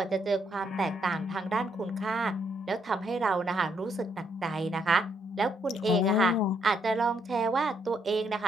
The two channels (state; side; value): normal; both; correlation 0.74